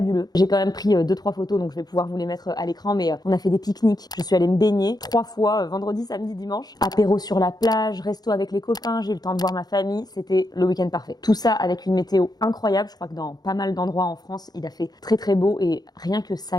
J'ai quand même pris 2-3 photos, donc je vais pouvoir vous les mettre à l'écran, mais on a fait des pique-niques. Je suis allée me baigner 3 fois, vendredi, samedi, dimanche. Apéro sur la plage, resto avec les copains, j'ai eu le temps de voir ma famille, c'était le week-end parfait. Tout ça avec une météo incroyable, je crois que dans pas mal d'endroits en France, il a fait très très beau et rien que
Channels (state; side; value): late; right; 0.19 ms